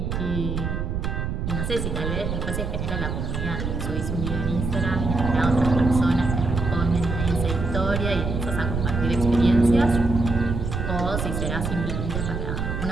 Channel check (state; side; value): noise; right; rumble, 3 dB below the sound